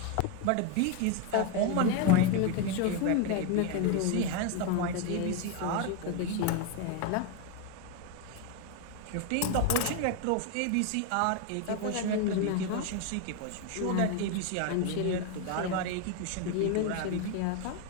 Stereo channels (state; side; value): different; both; correlation 0.02